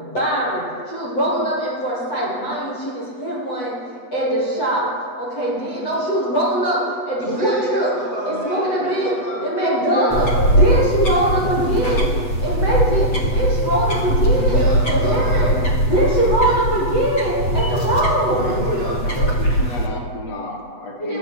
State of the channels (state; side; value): late; right; 8.1 ms